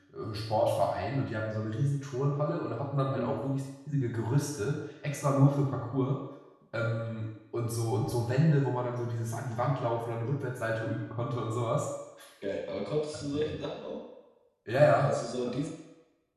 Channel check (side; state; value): both; identical; correlation 1.00